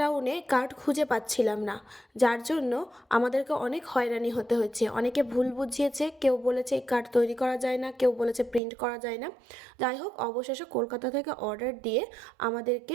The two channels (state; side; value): drops out; left; at 8.6 s